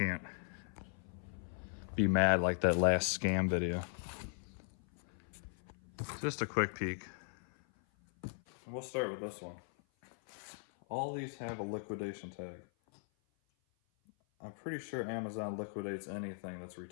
be mad like that last scam video. Just a quick peek. And we'll start with this one. All these have a liquidation tag. I'm pretty sure Amazon liquidates anything that's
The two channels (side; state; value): right; silent; 52 dB below the other